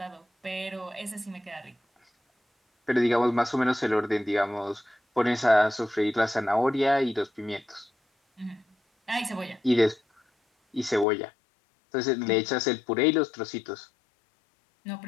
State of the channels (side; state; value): right; drops out; at 11.1 s